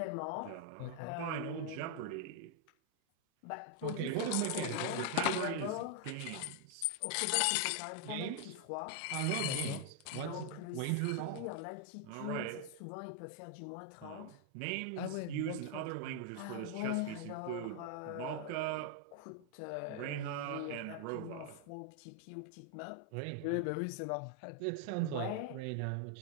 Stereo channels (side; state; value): both; different; correlation 0.00